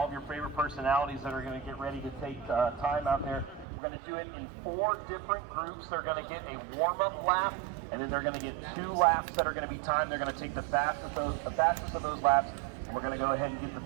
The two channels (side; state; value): left; drops out; at 3.7 s